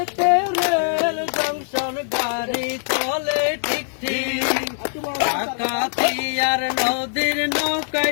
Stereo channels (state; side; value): silent; right; 64 dB below the other